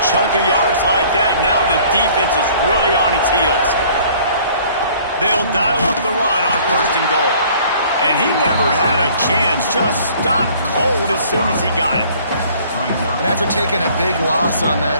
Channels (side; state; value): both; inverted; correlation -0.55